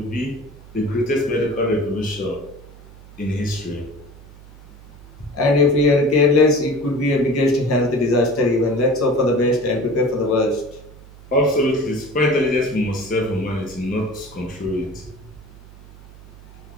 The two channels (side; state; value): right; noise; hum, 21 dB below the sound